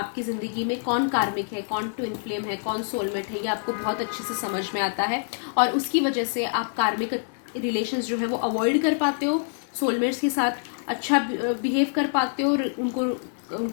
ज़िंदगी में कौन कार्मिक है, कौन ट्विन फ्लेम है, कौन सोलमेट है, ये आपको बहुत अच्छे से समझ में आता है। और उसकी वजह से आप कार्मिक रिलेशंस जो है वो अवॉइड कर पाते हो, सोलमेट्स के साथ अच्छा बिहेव कर पाते हो,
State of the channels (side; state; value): right; silent; 61 dB below the other